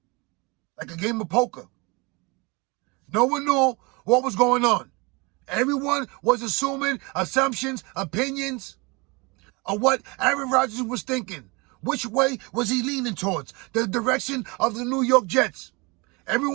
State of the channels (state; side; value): quieter; left; 27.4 dB